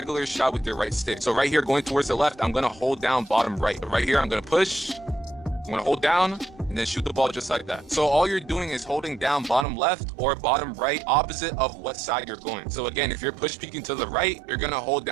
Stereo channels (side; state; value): left; drops out; at 9.7 s